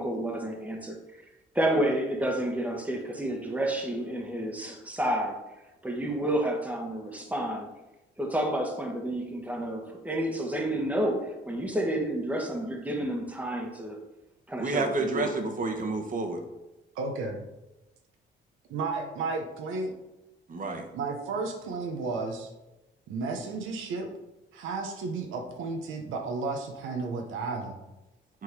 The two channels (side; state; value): both; normal; correlation 0.53